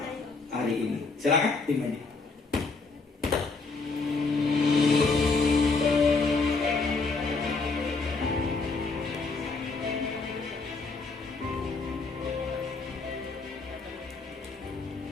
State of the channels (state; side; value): quieter; right; 4.1 dB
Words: hari ini. Silakan tim ini.